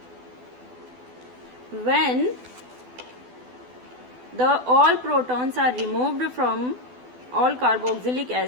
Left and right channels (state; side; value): late; left; 12 ms